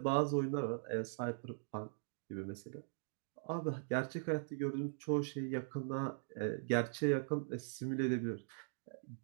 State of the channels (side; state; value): left; silent; digital silence